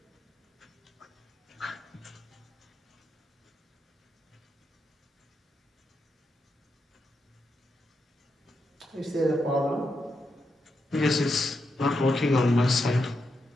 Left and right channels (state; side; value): normal; both; correlation 0.84